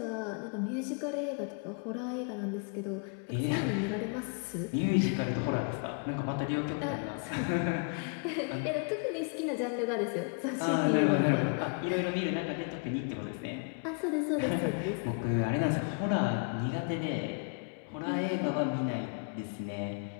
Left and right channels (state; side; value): quieter; right; 38.3 dB